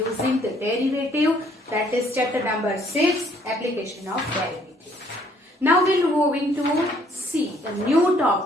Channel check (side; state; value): both; normal; correlation 0.63